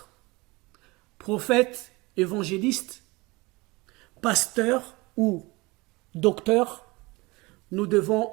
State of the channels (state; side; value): quieter; left; 23.7 dB